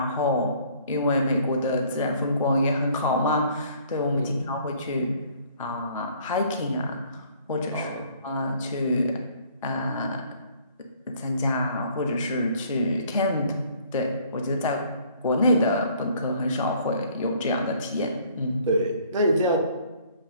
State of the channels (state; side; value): inverted; both; correlation -0.58